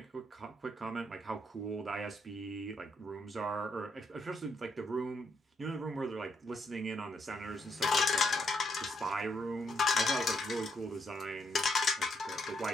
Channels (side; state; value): both; normal; correlation 0.75